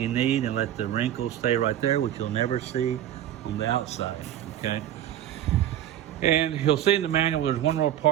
need and let the wrinkles stay right there, which you'll never see on the outside, okay? And you'll see in the manual, there's one little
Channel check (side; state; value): left; quieter; 11.5 dB